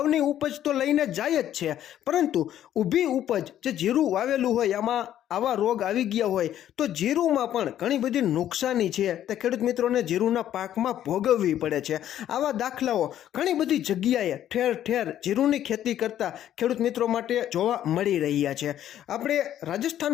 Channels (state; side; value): quieter; right; 11.4 dB